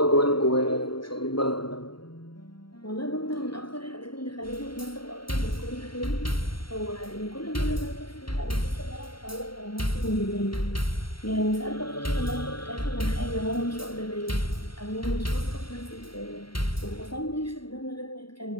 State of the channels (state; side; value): late; right; 0.73 ms